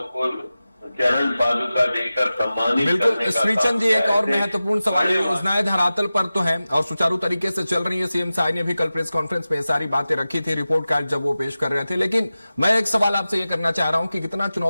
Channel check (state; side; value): inverted; both; correlation -0.95